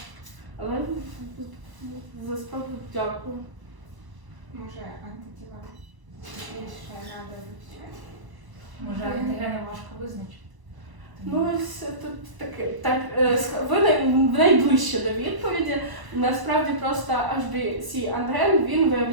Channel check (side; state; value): left; late; 1.0 ms